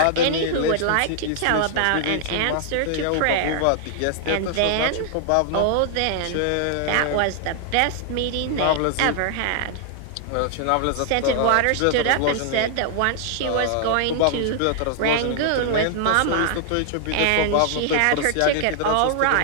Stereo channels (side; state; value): both; different; correlation -0.01